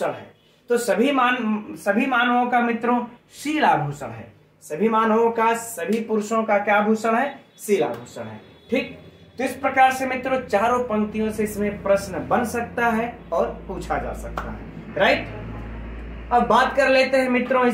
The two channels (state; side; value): identical; both; correlation 1.00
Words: है? तो सभी मानवों का मित्रों शील आभूषण है। सभी मानवों का, सभी पुरुषों का क्या आभूषण है? शील आभूषण है। ठीक, तो इस प्रकार से मित्रों चारों पंक्तियों से इसमें प्रश्न बन सकता है और पूछा जा सकता है। राइट, अब बात कर लेते हैं मित्रों